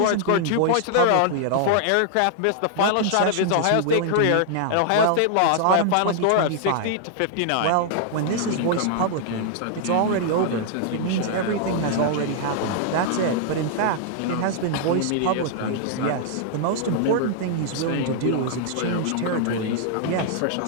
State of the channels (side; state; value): both; different; correlation -0.01